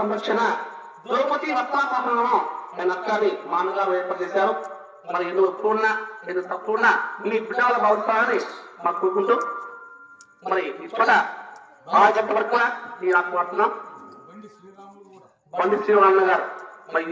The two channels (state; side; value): identical; both; correlation 1.00